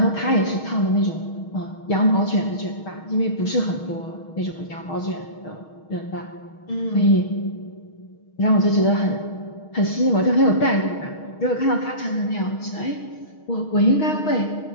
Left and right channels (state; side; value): late; right; 6.4 ms